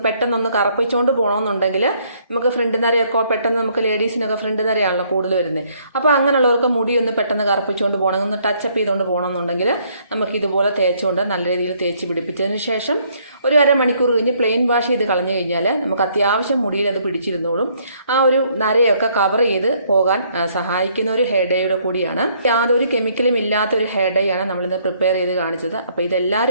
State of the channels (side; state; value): both; inverted; correlation -0.66